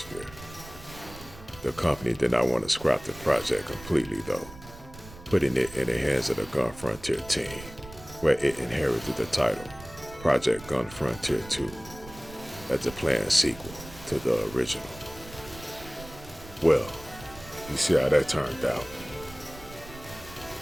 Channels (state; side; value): noise; right; rumble, 17 dB below the sound